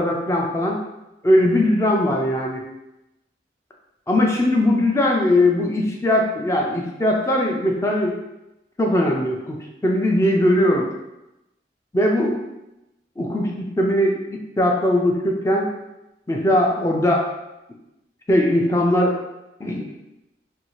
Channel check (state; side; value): normal; both; correlation 0.69